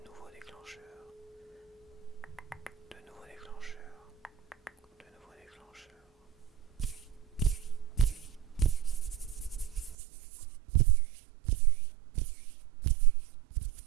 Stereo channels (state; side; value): drops out; left; at 10.0 s